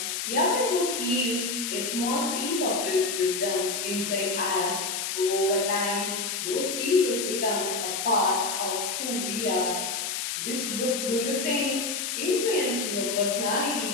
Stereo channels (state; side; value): noise; left; hiss, 2 dB below the sound